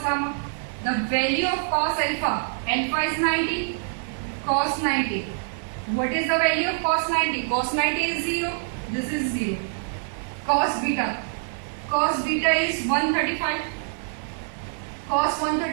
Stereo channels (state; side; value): silent; left; 62 dB below the other